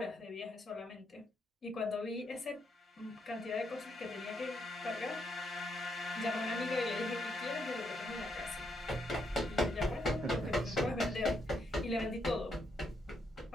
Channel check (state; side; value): normal; both; correlation 0.77